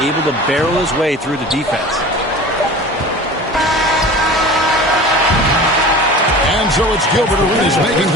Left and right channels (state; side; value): normal; both; correlation 0.38